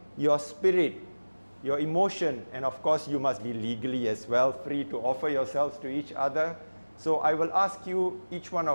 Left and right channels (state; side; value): inverted; both; correlation -1.00